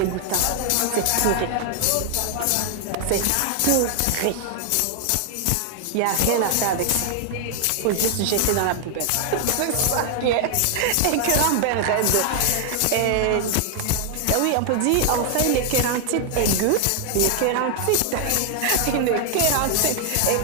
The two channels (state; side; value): different; both; correlation 0.00